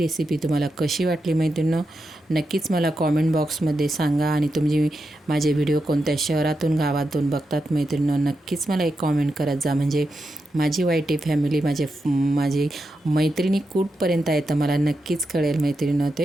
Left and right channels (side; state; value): both; normal; correlation 0.87